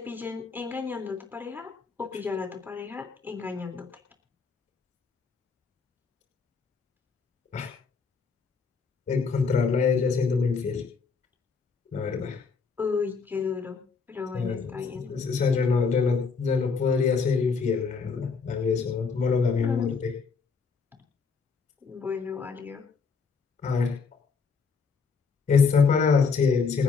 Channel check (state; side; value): quieter; right; 5.1 dB